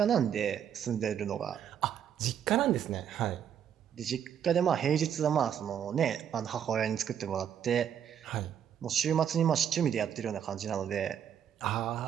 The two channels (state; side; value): quieter; left; 9.0 dB